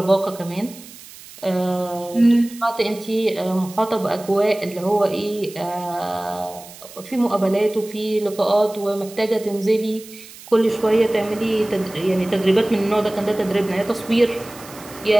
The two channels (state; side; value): noise; right; hiss, 18 dB below the sound